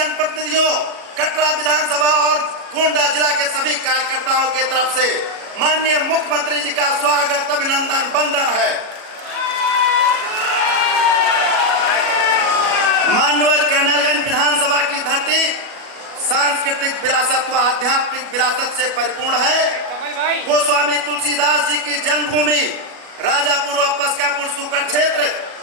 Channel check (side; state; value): left; late; 37 ms